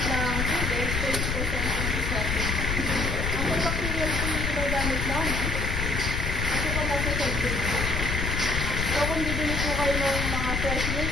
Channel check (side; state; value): left; noise; rumble, 1 dB below the sound